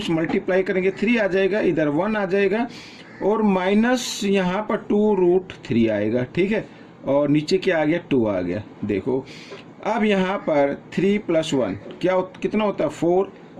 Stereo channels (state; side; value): identical; both; correlation 1.00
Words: मल्टीप्लाई करेंगे 3 आ जाएगा, इधर 1 आ जाएगा और माइनस यहाँ पर 2√3 आएगा। ठीक है, और नीचे क्या आ गया, 2 आ गया। देखो अब यहाँ पर 3 + 1 कितना होता है, 4